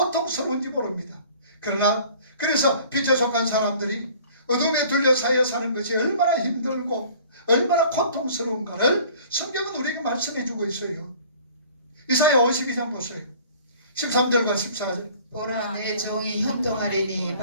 모릅니다. 그래서 빛에 속한 사람들이 어둠에 둘러싸여 사는 것이 얼마나 힘들고 얼마나 고통스러운가를 성경은 우리에게 말씀해 주고 있어요. 이사야 52장 보세요. 13절과 14절. 보라, 내 종이 형통하리니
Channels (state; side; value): inverted; both; correlation -0.50